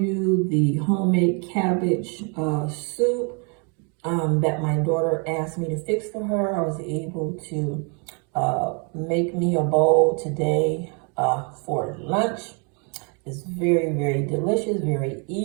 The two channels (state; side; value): quieter; left; 36.5 dB